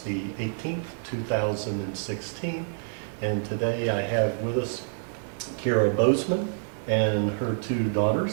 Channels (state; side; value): silent; left; 60 dB below the other